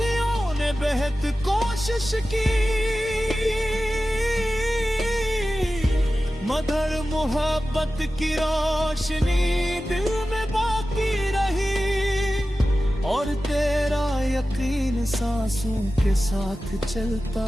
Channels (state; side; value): normal; both; correlation 0.95